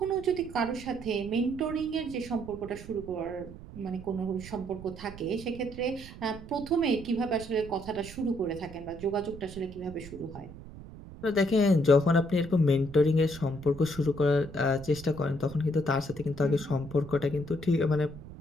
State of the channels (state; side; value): noise; right; rumble, 15 dB below the sound